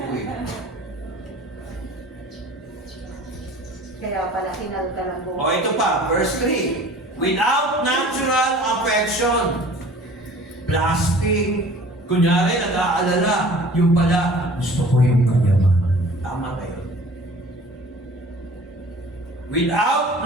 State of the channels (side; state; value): both; normal; correlation 0.46